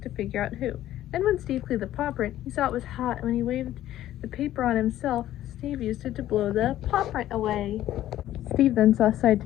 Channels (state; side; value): quieter; right; 13.3 dB